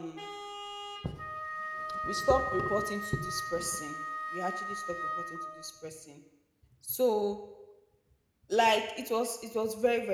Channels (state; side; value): identical; both; correlation 1.00